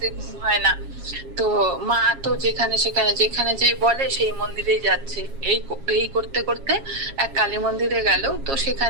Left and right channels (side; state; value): left; late; 7.3 ms